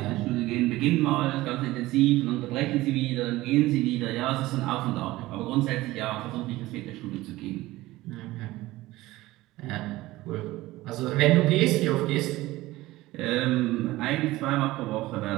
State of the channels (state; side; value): quieter; left; 18.0 dB